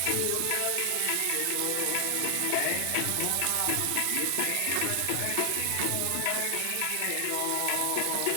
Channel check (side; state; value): both; different; correlation 0.00